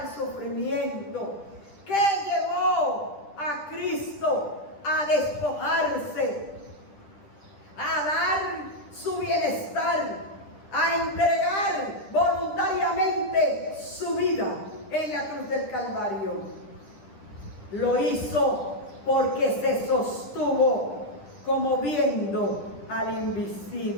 el sufrimiento, que llevó a Cristo a despojarse, a dar su bienestar, a entregar voluntariamente su vida en la cruz del Calvario. Lo hizo porque se sostuvo como viendo al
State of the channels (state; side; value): late; right; 10 ms